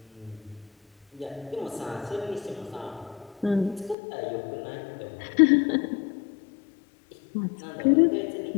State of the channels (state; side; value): drops out; right; at 4.0 s